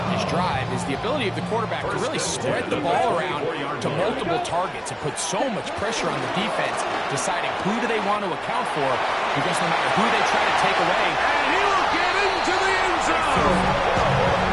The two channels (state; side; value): identical; both; correlation 1.00